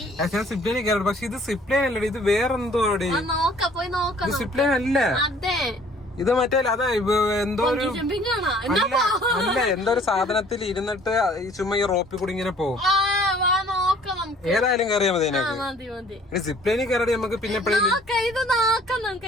ഞാൻ സിപ്പ് ലൈനിൽ കയറി, പക്ഷെ ഇത് സിപ്പ് ലൈൻ അല്ലേ, ഇത് വേറെന്തോ. ഇത് സിപ്പ് ലൈൻ അല്ല, ഇത് മറ്റേ അതാ എന്തോ ഒരു അല്ല എന്തോ ഒരു സാധനത്തിൽ ഇരുന്നിട്ട് ചുമ്മാ ഈ റോപ്പിൽ കൂടി ഇങ്ങനെ പോകും. ഏതായാലും കയറിയാൽ മതി. സിപ്പ് ലൈനിൽ കയറി നമുക്ക് പിന്നെ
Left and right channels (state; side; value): normal; both; correlation 0.55